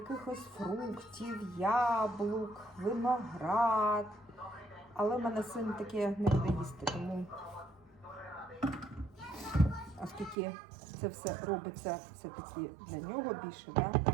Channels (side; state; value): left; drops out; at 10.4 s